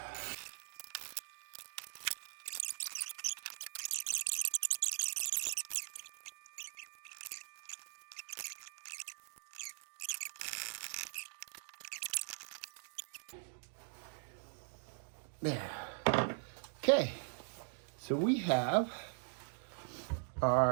There. Okay, so we have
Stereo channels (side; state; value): left; silent; 50 dB below the other